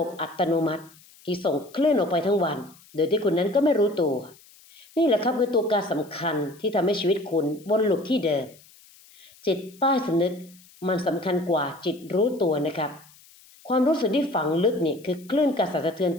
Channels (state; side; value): noise; left; hiss, 26 dB below the sound